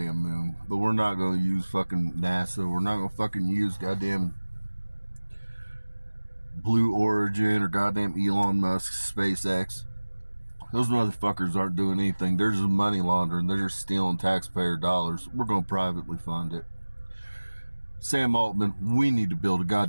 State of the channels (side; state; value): both; inverted; correlation -1.00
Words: moon. But we're not going to use fucking NASA. We're not going to fucking use goddamn Blue Origin or goddamn Elon Musk's SpaceX. Those motherfuckers aren't doing anything. They're just money laundering. They're just stealing taxpayer dollars. We're going to privately fund it. Sam Altman, we need to build a